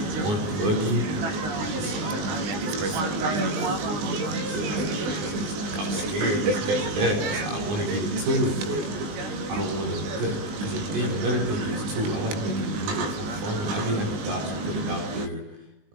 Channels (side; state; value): left; late; 19 ms